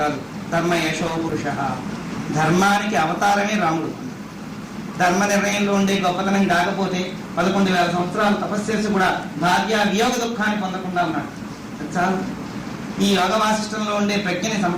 కాదు, ధర్మ యశో పురుష, ధర్మానికి అవతారమే రాముడు. ధర్మ నిర్ణయంలో ఉండే గొప్పతనం కాకపోతే 11,000 సంవత్సరాలు తపస్సు చేసి కూడా భార్య వియోగ దుఃఖాన్ని పొందకుండా ఉన్నాడు. చాలు. ఈ యోగ వాసిష్టంలో ఉండే ప్రజ్ఞని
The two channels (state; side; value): identical; both; correlation 1.00